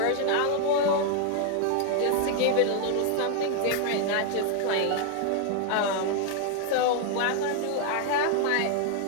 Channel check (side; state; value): both; different; correlation 0.00